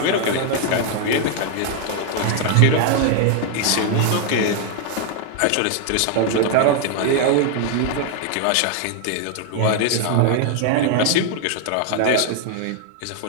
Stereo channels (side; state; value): both; different; correlation 0.00